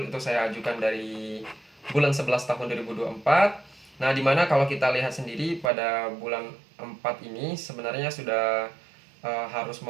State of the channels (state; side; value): drops out; left; at 5.7 s